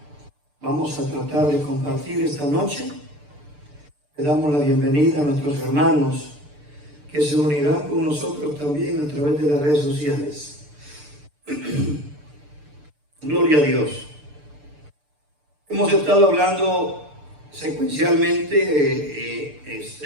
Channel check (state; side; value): late; left; 6.8 ms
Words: Vamos a tratar de compartir esta noche. Le damos la bienvenida a nuestros hermanos que se unirán con nosotros también a través de las redes sociales. Gloria a Dios. Hemos estado hablando secuencialmente en